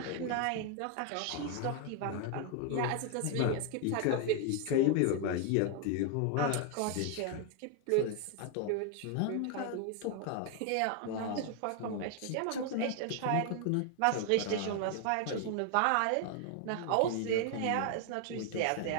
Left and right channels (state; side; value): different; both; correlation 0.00